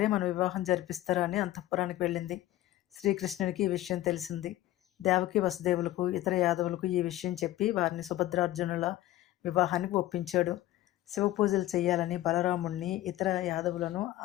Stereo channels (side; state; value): right; quieter; 15.1 dB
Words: మన వివాహం జరిపిస్తారా అని అంతఃపురానికి వెళ్ళింది. శ్రీకృష్ణునికి ఈ విషయం తెలిసింది. దేవకి వసుదేవులకు, ఇతర యాదవులకు ఈ విషయం చెప్పి వారిని సుభద్రార్జునుల వివాహానికి ఒప్పించాడు. శివపూజలు చేయాలని బలరాముణ్ణి, ఇతర యాదవులను